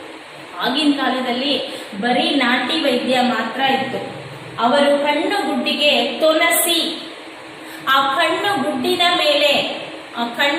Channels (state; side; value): identical; both; correlation 1.00